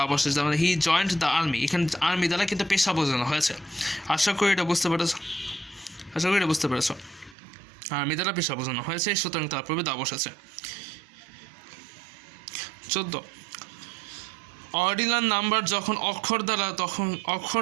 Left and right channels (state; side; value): drops out; left; at 7.4 s